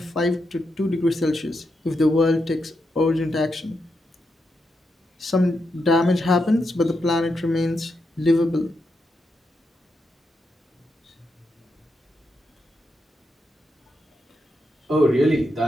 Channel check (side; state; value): both; normal; correlation 0.84